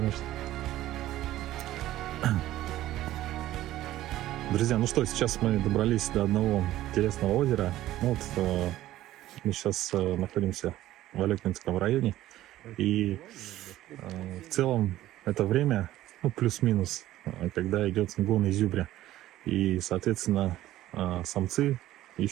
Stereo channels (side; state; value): left; quieter; 14.6 dB